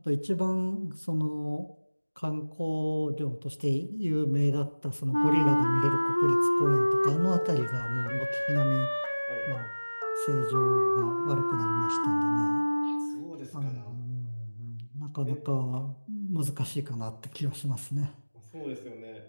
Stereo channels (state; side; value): inverted; both; correlation -1.00